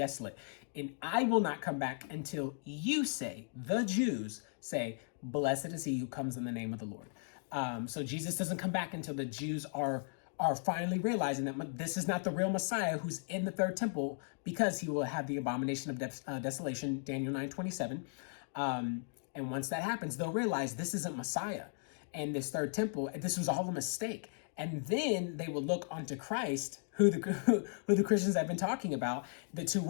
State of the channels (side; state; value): right; silent; 53 dB below the other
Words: And I will not come back until you say, the Jews say, blessed is he who comes in the name of the Lord. So Jesus doesn't come back until the Jews are finally realizing that this is not the real Messiah who's in the third temple, because he will have the abomination of desolation, Daniel 9:27. And once that happens, they'll realize this isn't Messiah. And this third temple, this was all a mistake. And then they will look onto Christ, who the Christians have been talking about, the two